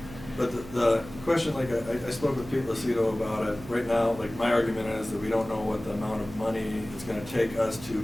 But the question, like, I spoke with Pete Lucido about it. Right now, like, my argument is that we don't know what the amount of money it's gonna take us to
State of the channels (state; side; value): noise; right; hum, 15 dB below the sound